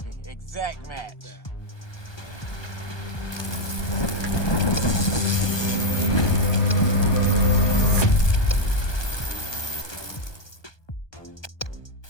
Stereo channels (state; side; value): late; right; 1.2 ms